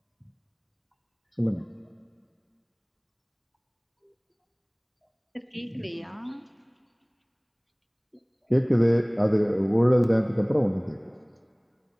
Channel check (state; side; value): identical; both; correlation 1.00